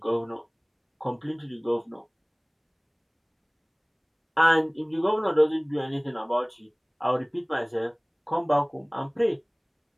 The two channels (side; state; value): both; identical; correlation 1.00